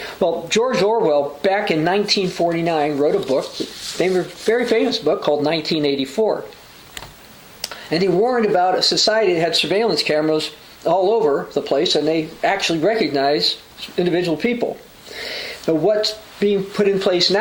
Well, George Orwell, back in 1949, wrote a book, a very famous book called 1984. And he warned about a society that had surveillance cameras all over the place, and they actually recognize individual people. But what's being put in place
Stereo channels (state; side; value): identical; both; correlation 1.00